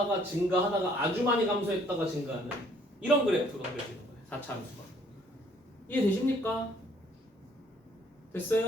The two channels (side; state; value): both; normal; correlation 0.62